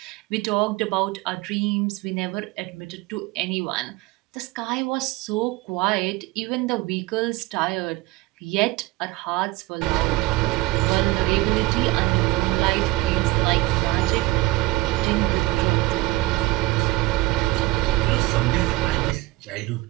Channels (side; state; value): left; quieter; 19.6 dB